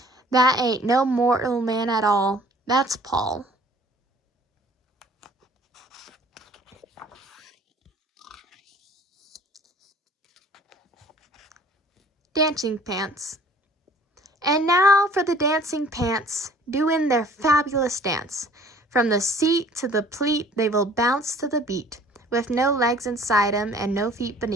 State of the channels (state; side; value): normal; both; correlation 0.52